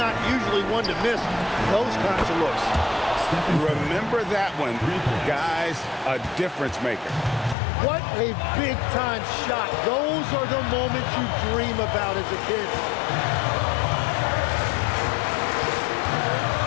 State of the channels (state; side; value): drops out; right; at 7.6 s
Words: usually one to miss those kinds of looks. Remember that one, guys, a difference maker. What a big-time shot. Those are the moments you dream about as a kid.